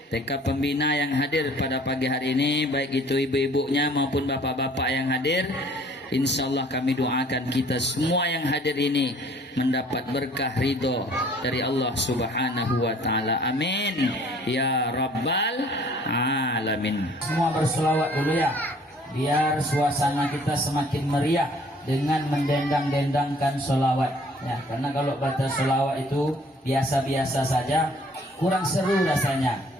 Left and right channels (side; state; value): both; normal; correlation 0.55